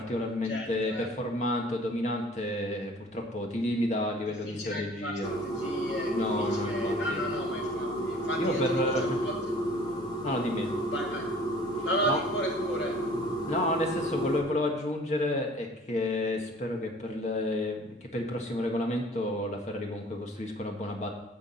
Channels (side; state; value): both; normal; correlation 0.50